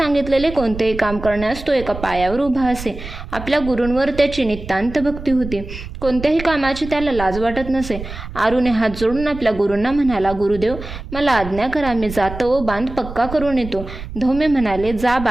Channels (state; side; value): noise; right; rumble, 11 dB below the sound